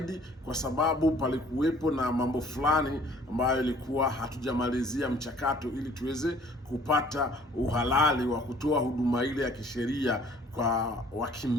kwa sababu palikuwepo na mambo fulani ambayo ilikuwa hatujamalizia mchakato ili tuweze kupata uhalali wa kutoa huduma ile ya kisheria kwa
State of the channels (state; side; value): normal; both; correlation 0.55